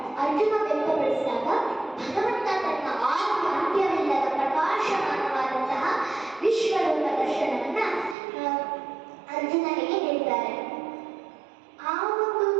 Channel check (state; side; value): drops out; left; at 8.2 s